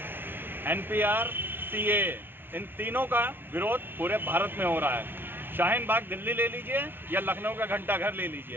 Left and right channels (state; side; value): late; left; 0.10 ms